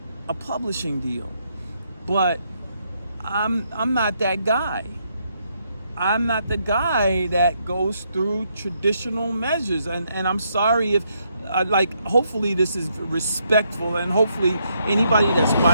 a publishing deal. But I'm not that guy. I'm not the guy that goes through traditional measures, and I'm sorry if hopefully this is respectful, and hopefully anybody that's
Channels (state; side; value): inverted; both; correlation -0.76